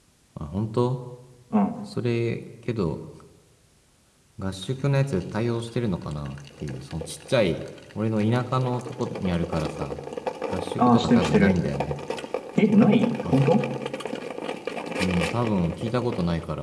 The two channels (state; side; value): identical; both; correlation 1.00